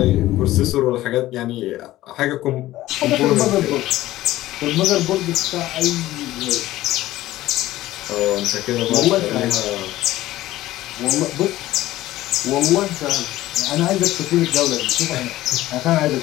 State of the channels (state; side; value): quieter; right; 15.7 dB